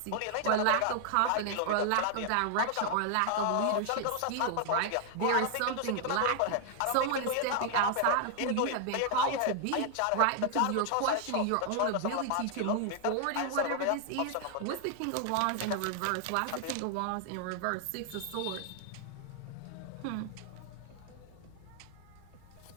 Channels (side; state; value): both; different; correlation 0.00